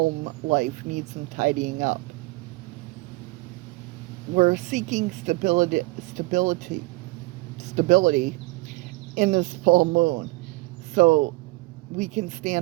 life needs some tidying up. We're seeking stability in this full moon, so we can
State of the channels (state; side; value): quieter; left; 23.4 dB